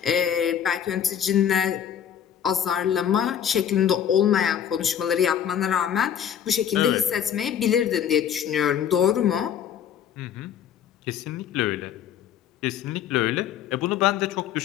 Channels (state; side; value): quieter; right; 9.2 dB